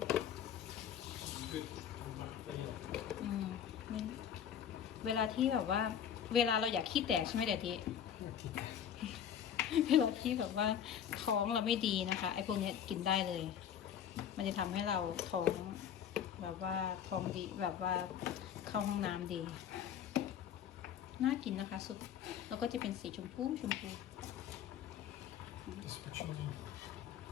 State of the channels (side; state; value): right; quieter; 9.0 dB